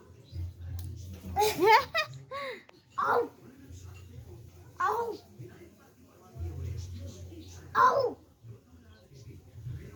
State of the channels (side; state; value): both; identical; correlation 1.00